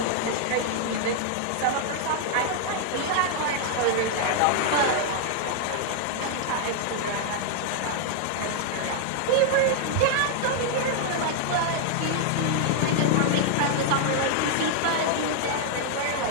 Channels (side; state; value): both; different; correlation 0.00